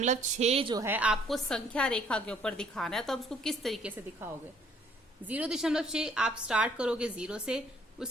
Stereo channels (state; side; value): normal; both; correlation 0.62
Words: जो है आपको संख्या रेखा के ऊपर दिखाना है, तो आप उसको किस तरीके से दिखाओगे। 0.6 आप स्टार्ट करोगे 0 से,